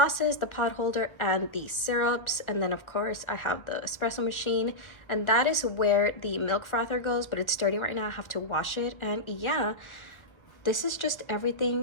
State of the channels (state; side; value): late; right; 1.4 ms